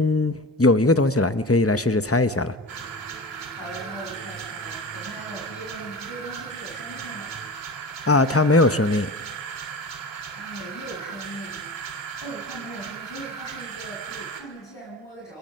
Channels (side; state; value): both; normal; correlation 0.31